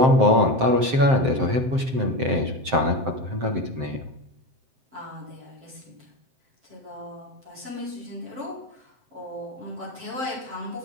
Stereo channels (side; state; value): left; late; 7.6 ms